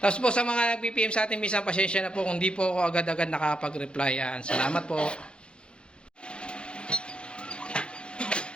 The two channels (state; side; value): late; right; 0.055 ms